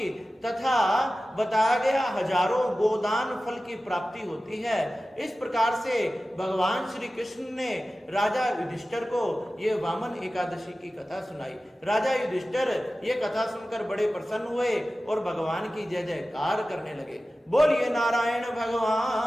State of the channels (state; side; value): normal; both; correlation 0.95